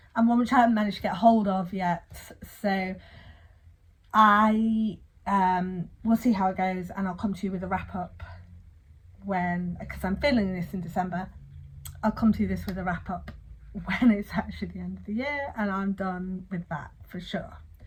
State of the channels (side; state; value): both; identical; correlation 1.00